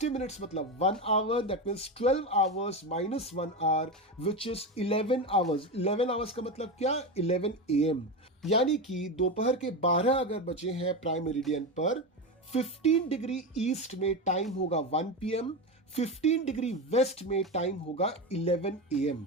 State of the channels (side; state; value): both; normal; correlation 0.18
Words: मिनट्स मतलब 1 hour, that means 12 hours - 1 hour which is 11 hours. 11 hours का मतलब क्या? 11 AM, यानी कि दोपहर के 12 अगर बजे हैं प्राइम मेरिडियन पर, 15 डिग्री ईस्ट में टाइम होगा 1 PM, 15 डिग्री वेस्ट में टाइम होगा 11 AM।